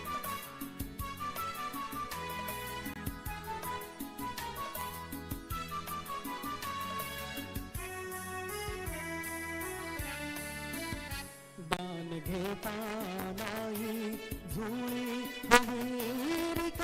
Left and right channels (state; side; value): identical; both; correlation 1.00